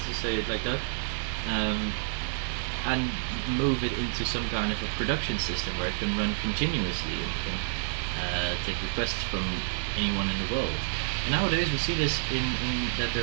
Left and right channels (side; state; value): left; silent; digital silence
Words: it like that, and move it into some kind of a production system where it can run continuously and can take requests from anyone in the world. And nowadays we see this in that